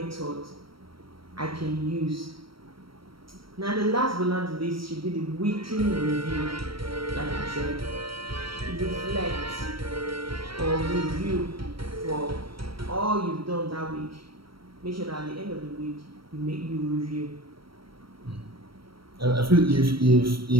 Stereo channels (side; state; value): left; late; 0.75 ms